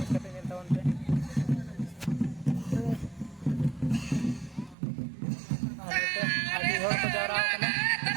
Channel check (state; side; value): drops out; left; at 4.8 s